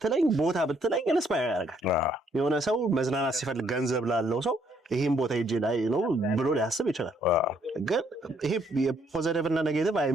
ቦታ ብትለኝ ኢንስፓየር ያደርጋል። የሆነ ሰው መዝናናት ሲፈልግ ገንዘብ ላለው ሰው ይሄን ቦታ ሄጄ ላይ ነው ብሎ ሊያስብ ይችላል። ግን ይሄ የፖዚቲቭ እና ኔጌቲቭ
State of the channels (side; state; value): both; normal; correlation 0.69